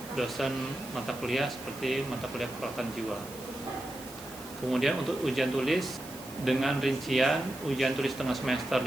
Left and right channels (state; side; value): noise; right; hiss, 16 dB below the sound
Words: dosen mata kuliah seperti mata kuliah keperawatan jiwa. Kemudian untuk ujian tulis dengan rincian ujian tulis tengah semester